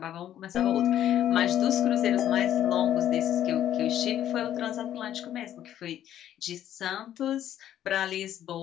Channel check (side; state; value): right; quieter; 11.3 dB